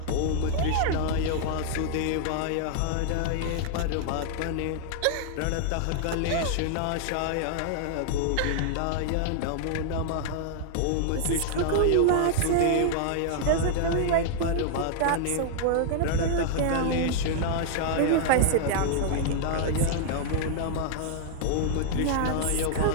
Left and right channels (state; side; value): different; both; correlation -0.01